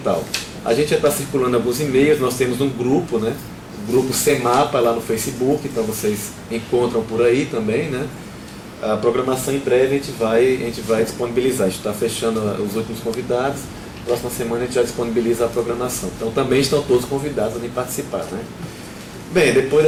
A gente já está circulando alguns e-mails, nós temos um grupo, né, o grupo CEMAPA lá no Facebook, então vocês encontram por aí também, né. A programação em breve a gente vai disponibilizar, a gente está fechando os últimos convidados, próxima semana a gente já disponibiliza a programação. Então também estão todos convidados a vir participar, né. Bem, depois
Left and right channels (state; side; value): identical; both; correlation 1.00